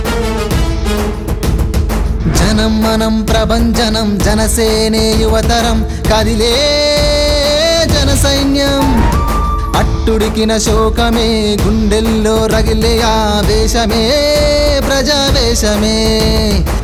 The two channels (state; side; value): identical; both; correlation 1.00